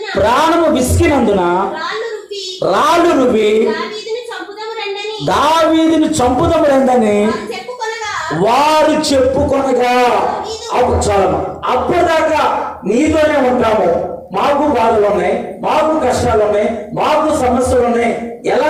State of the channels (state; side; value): identical; both; correlation 1.00